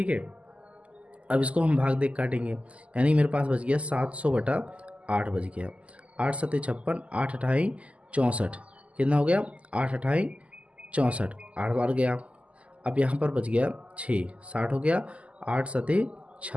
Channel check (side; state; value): left; late; 0.064 ms